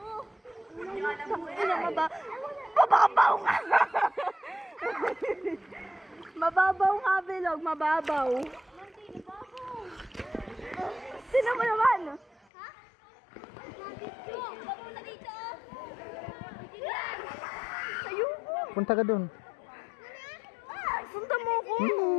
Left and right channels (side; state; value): right; drops out; at 12.4 s